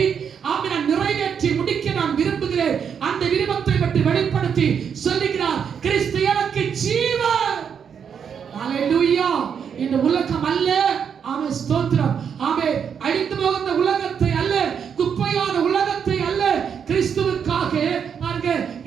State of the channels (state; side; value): quieter; left; 7.4 dB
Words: ஆமென் நிறைவேற்றி முடிக்க நான் விரும்புகிறேன். அந்த விருப்பத்தை பற்றி வெளிப்படுத்தி சொல்லுகிறார், கிறிஸ்து எனக்கு ஜீவன். ஹalleluya. இந்த உலகம் அல்ல, ஆமென் ஸ்தோத்திரம், ஆமென் அழிந்து போகிற உலகத்தை அல்ல, குப்பையான உலகத்தை அல்ல, கிறிஸ்துவுக்காக நான்